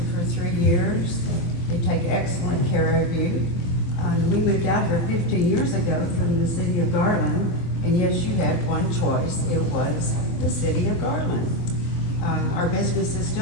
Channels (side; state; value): right; late; 24 ms